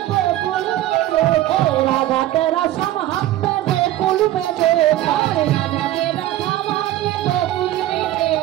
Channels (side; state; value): left; quieter; 14.3 dB